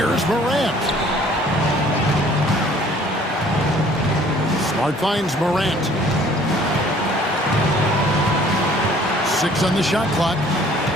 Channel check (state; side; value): normal; both; correlation 0.55